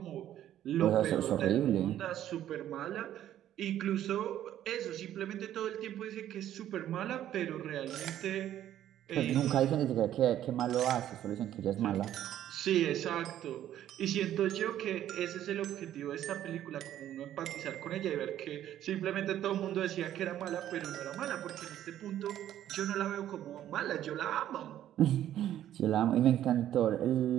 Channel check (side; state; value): left; quieter; 11.8 dB